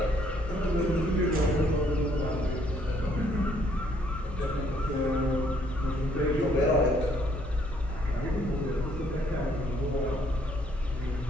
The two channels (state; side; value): normal; both; correlation 0.66